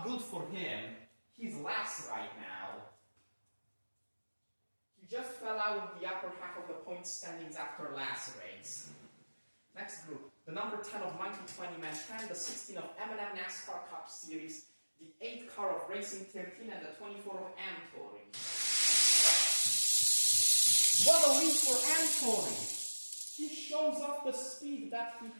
good for him. He's last right now. He just fell out of the upper half of the point standings after last race. Next group, the number 10 of Monkey 20 Man 10, the 16 of M&M NASCAR Cup Series, the 8 car of Racing 13, and the 24 of Tori. What a lead for Tori! He shows off the speed that he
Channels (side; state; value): both; inverted; correlation -1.00